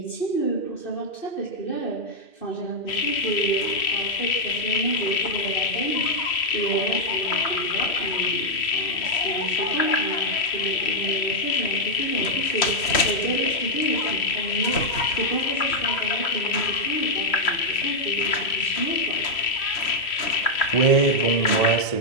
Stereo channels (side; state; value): right; late; 3.0 ms